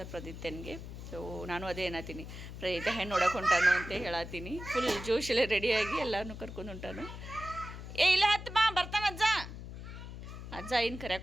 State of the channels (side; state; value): left; noise; hum, 10 dB below the sound